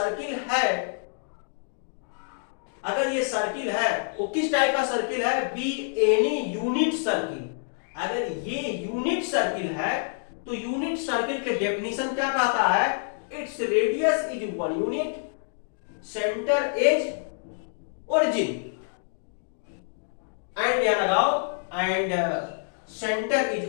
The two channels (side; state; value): right; silent; digital silence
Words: सर्किल है वो किस टाइप का सर्किल है, बी एनी यूनिट सर्किल। अगर ये यूनिट सर्किल है तो यूनिट सर्किल के डेफिनेशन क्या कहता है, it's radius is 1 unit, centre is origin, and यहां लगाओ एंड सेंटर